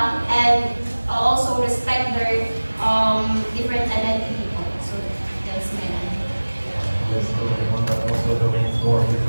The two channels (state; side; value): inverted; both; correlation -1.00